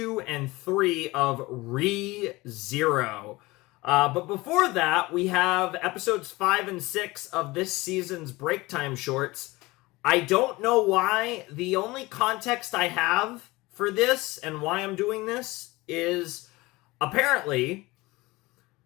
and 3 of ReZero. But before that, we have Episodes 5 and 6 of this season's Breaktime shorts. I don't know why. The only context I have for this and why I'm doing this is apparently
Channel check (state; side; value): quieter; right; 21.4 dB